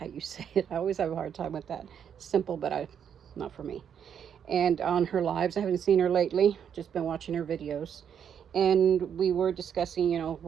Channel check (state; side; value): quieter; left; 8.3 dB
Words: you say it. I always have a hard time with that. Simple, but not for me. And on her lives, I haven't seen her lately, just been watching her videos, and we were discussing, you know,